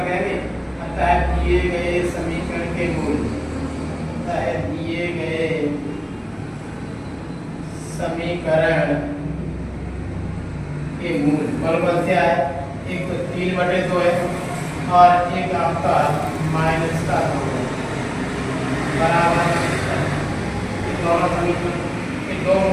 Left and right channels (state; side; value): identical; both; correlation 1.00